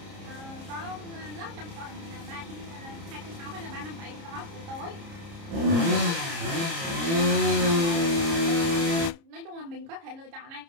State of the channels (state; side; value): late; left; 30 ms